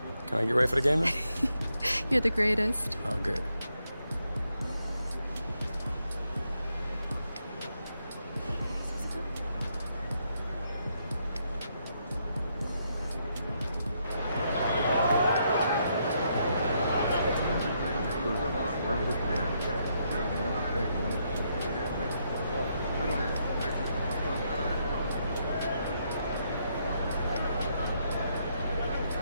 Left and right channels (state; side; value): inverted; both; correlation -0.77